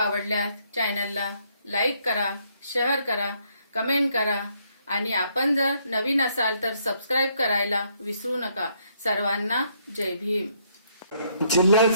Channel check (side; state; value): both; inverted; correlation -0.71